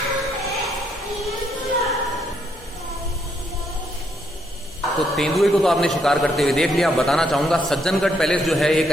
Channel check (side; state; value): both; normal; correlation 0.74